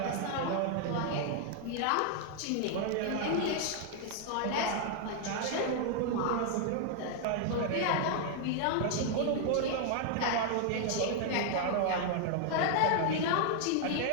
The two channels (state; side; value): different; both; correlation 0.00